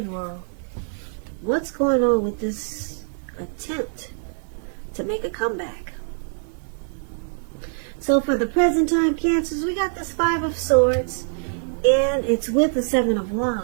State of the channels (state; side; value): silent; left; digital silence